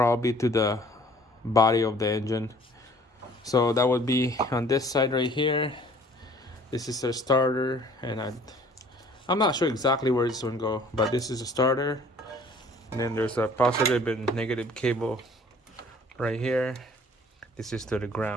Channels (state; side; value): normal; both; correlation 0.53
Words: to the body of the engine. So that would be on this side right here. This is the starter, and I'm not sure exactly where this one go, but this is a starter, and then there's a positive and negative cable right here. This is to the